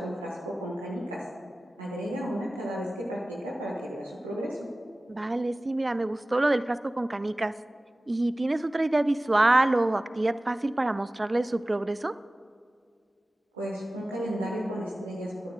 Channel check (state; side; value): normal; both; correlation 0.97